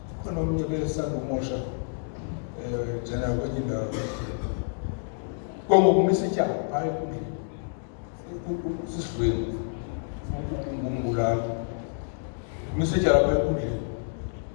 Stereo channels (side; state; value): right; silent; digital silence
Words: khona omnye besandumosha njena kwenye indawo kongokumisa ityala phaa enkundleni sisidlweni ngumbulali umisa ityala phaa enkundleni